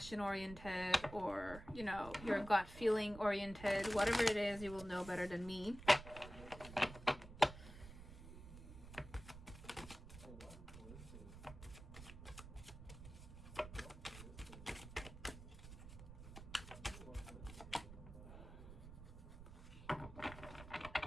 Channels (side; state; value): right; noise; rumble, 13 dB below the sound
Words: oriented, or you know, your gut feeling oriented. Whatever it is, you will know better than me.